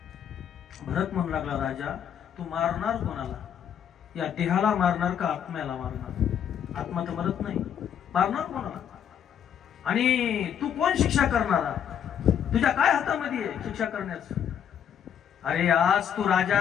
भरत म्हणू लागला राजा तू मारणार कोणाला? या देहाला मारणार का आत्म्याला मारणार? आत्मा तर मरत नाही, मारणार कोणाला? आणि तू कोण शिक्षा करणारा? तुझ्या काय हातामध्ये आहे शिक्षा करण्याचं? अरे आज तू राजा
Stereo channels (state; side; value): quieter; right; 8.9 dB